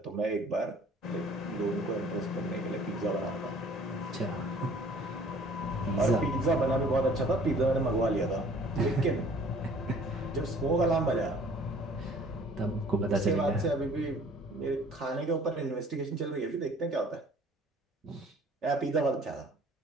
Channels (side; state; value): both; normal; correlation 0.53